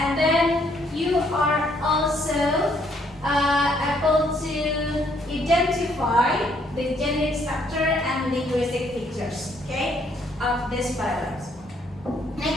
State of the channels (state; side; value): normal; both; correlation 0.68